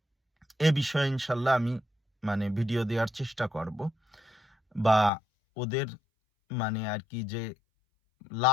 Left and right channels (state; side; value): drops out; right; at 5.1 s